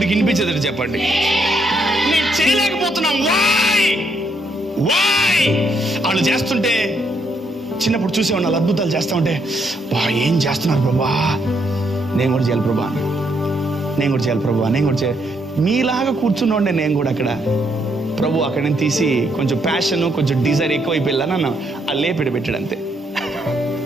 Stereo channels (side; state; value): both; normal; correlation 0.75